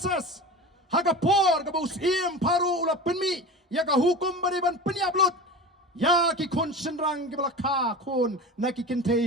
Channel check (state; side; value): normal; both; correlation 0.31